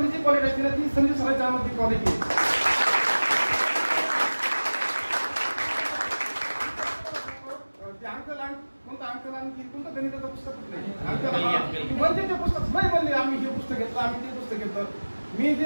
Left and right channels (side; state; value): both; inverted; correlation -1.00